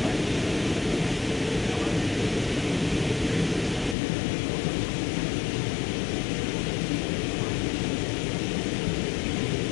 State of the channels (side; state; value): right; drops out; at 4.0 s